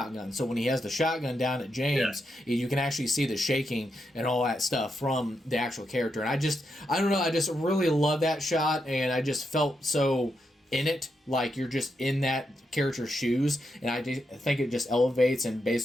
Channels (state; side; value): normal; both; correlation 0.83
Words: so when he has the shotgun down at James, you can actually see the shaking and all that stuff from the actual character. And I just really love that shot, and I just felt so in it, like you're just in that character's shoes, and I think it just elevates and